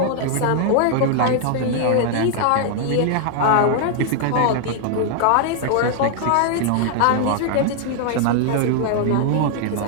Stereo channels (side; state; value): both; different; correlation 0.00